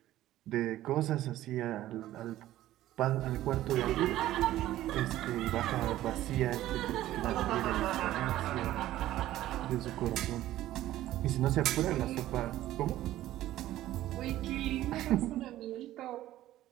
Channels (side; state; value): left; quieter; 14.3 dB